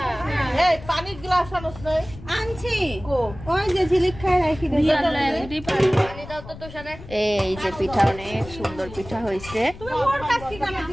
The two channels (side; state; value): left; noise; rumble, 15 dB below the sound